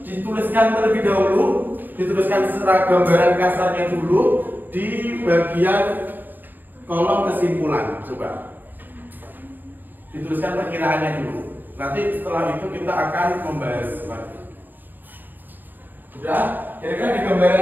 dituliskan terlebih dahulu, dituliskan secara gambaran kasarnya dulu di bagian kolom kesimpulan. Coba dituliskan perkiraannya dulu. Nanti setelah itu kita akan membahas lagi. Sudah? Kira-kira di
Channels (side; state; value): left; late; 0.090 ms